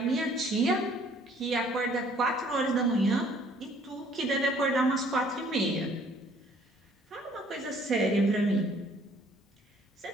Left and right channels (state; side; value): normal; both; correlation 0.59